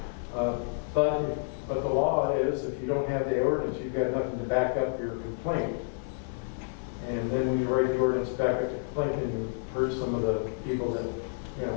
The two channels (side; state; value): right; silent; 58 dB below the other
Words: but the law is, if you don't have the ordinance, you've got nothing to back up your complaint. And then when you write the ordinance back up the complaint, and you hurt some of the people that,